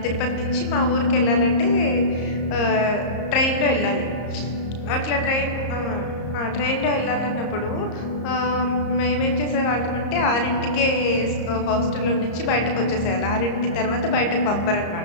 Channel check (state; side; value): late; right; 34 ms